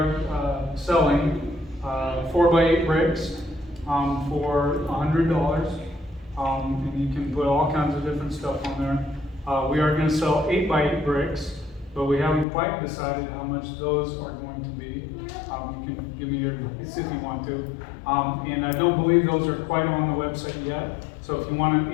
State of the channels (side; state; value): right; drops out; at 12.5 s